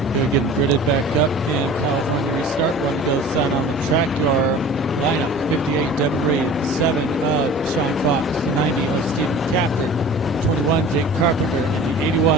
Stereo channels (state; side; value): normal; both; correlation 0.42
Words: He'll get gridded back up in California restart. One goes sign on the track. Your lineup: 58 Devin Reed, 7 of Sean Fox, the 90 of Stephen Capter, 21 Jake Carpenter, and the